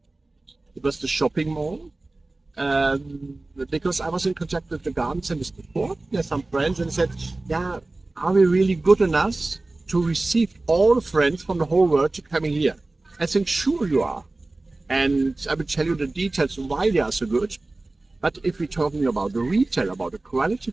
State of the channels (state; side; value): quieter; left; 3.0 dB